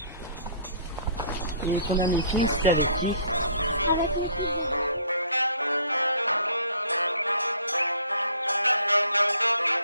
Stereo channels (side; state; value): both; inverted; correlation -0.55